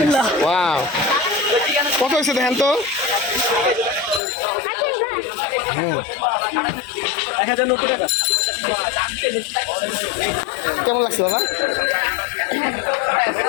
ওয়াও, কত হয়েছে দেখেন তো? হ্যাঁ 1090 টাকা। কেমন লাগছে বাবা?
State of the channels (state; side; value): drops out; right; at 4.2 s